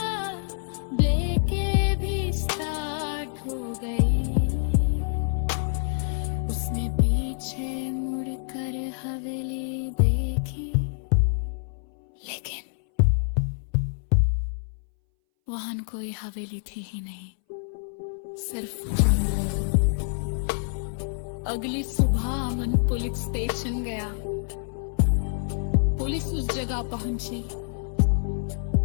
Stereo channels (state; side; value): silent; right; 60 dB below the other